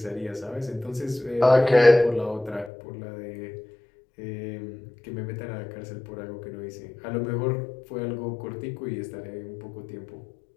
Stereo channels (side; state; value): right; drops out; at 2.7 s